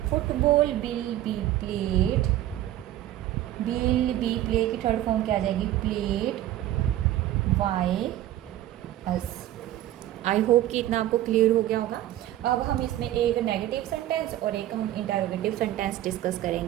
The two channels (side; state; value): left; quieter; 13.6 dB